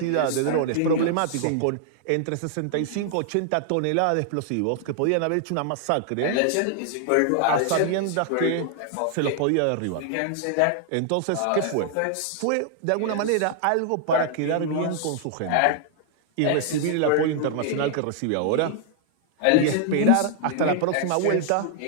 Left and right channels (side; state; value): both; different; correlation -0.01